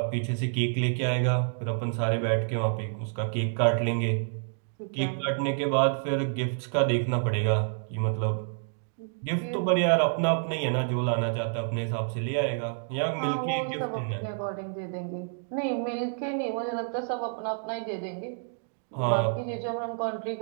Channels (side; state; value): left; silent; digital silence